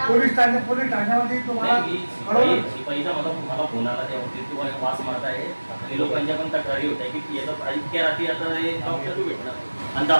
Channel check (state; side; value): inverted; both; correlation -1.00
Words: पोलीस ठाण्यामध्ये तुम्हाला शिपाईचा मला फोन आला, त्यावरती तुम्हाला वास मारत आहे आणि लोकांच्या पण तक्रारी होत आहे की याचा इतक्या रात्री आता हे डॉक्टर भेटणार आणि